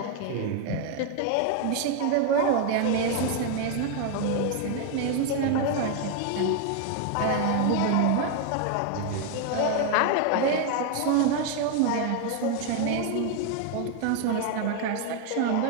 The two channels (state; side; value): different; both; correlation 0.01